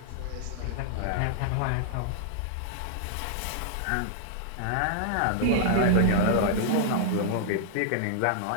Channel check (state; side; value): different; both; correlation -0.01